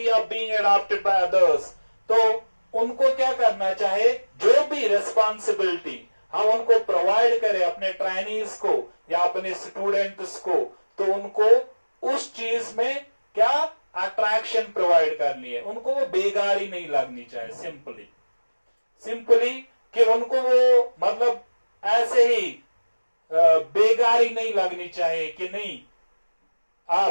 of being adopted by others, तो उनको क्या करना चाहे, जो भी रिस्पॉन्सिबिलिटी हम उनको प्रोवाइड करें अपने ट्रेनीज को या अपने स्टूडेंट्स को, तो उनको उस चीज में क्या अट्रैक्शन प्रोवाइड करनी है, उनको वो बेगारी नहीं लगनी चाहिए। सिंपली कि उनको वो मतलब ऐसे ही बेगारी नहीं लगनी चाहिए कि नहीं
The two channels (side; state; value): both; inverted; correlation -1.00